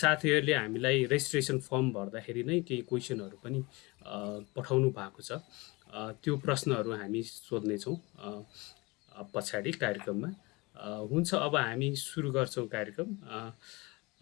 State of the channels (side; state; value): right; quieter; 24.7 dB